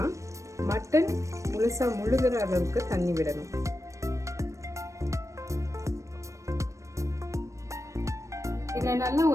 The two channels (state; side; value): late; left; 0.15 ms